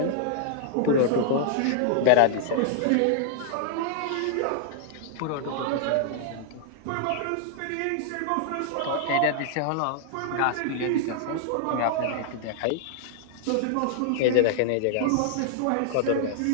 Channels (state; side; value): different; both; correlation -0.01